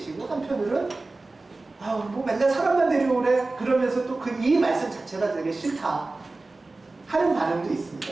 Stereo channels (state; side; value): quieter; left; 3.3 dB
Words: 한편으로는 뭐 맨날 사람만 데려오래 그러면서 또 이 말씀 자체가 되게 싫다 하는 반응도